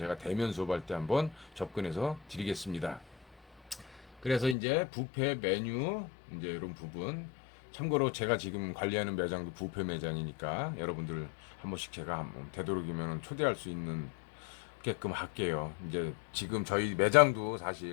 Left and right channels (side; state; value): right; drops out; at 4.5 s